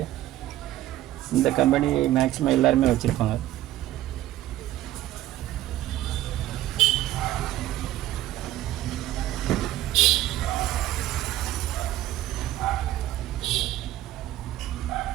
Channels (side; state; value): left; quieter; 14.2 dB